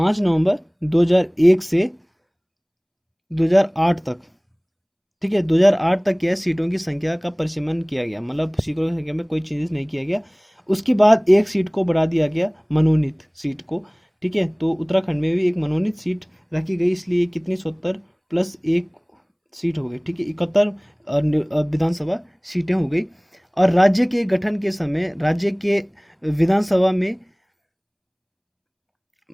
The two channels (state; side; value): identical; both; correlation 1.00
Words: 2001 से 2008 तक, ठीक है, 2008 तक क्या सीटों की संख्या का परिसीमन किया गया, मतलब सीटों की संख्या में कोई चेंजेस नहीं किया गया। उसके बाद एक सीट को बढ़ा दिया गया, मनोनीत सीट को। ठीक है, तो उत्तराखंड में भी एक मनोनीत सीट रखी गई, इसलिए कितनी 70+1 सीट हो गई। ठीक है, 71 विधानसभा सीटें हो गई। और राज्य के गठन के समय राज्य के विधानसभा में